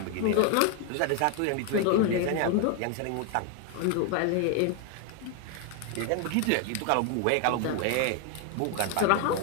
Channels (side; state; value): both; different; correlation 0.01